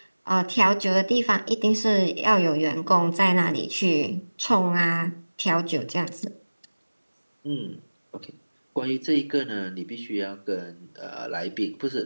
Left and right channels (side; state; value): both; inverted; correlation -1.00